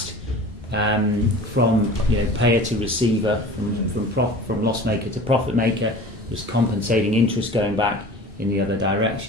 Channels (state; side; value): normal; both; correlation 0.40